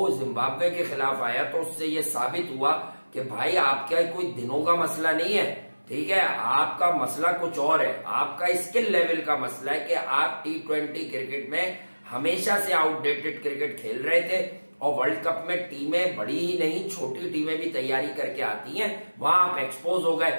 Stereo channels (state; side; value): inverted; both; correlation -1.00